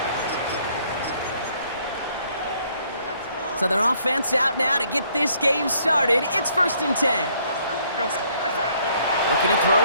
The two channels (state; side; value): inverted; both; correlation -0.65